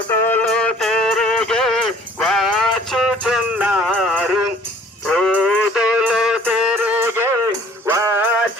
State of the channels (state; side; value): normal; both; correlation 0.54